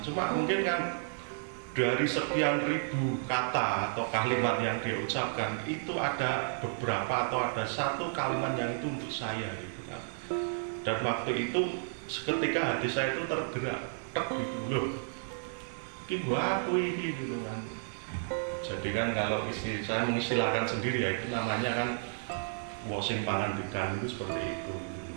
mungkin kan dari sekian ribu kata atau kalimat yang dia ucapkan itu ada beberapa atau ada satu kalimat yang itu untuk saya gitu kan. Dan waktu itu seketika hati saya itu tergerak, gitu loh, ini gua aku ini gitu kan. Jadi kan kalau saya mengistilahkan sendiri ya, itu namanya kan washing pangandikan itu seperti itu.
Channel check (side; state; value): left; silent; digital silence